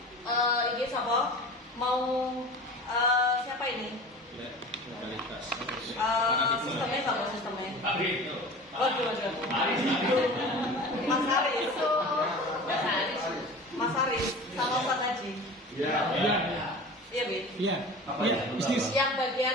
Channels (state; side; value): normal; both; correlation 0.37